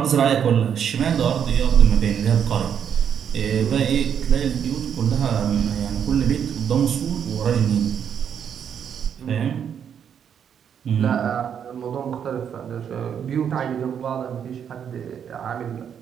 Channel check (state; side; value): quieter; left; 8.2 dB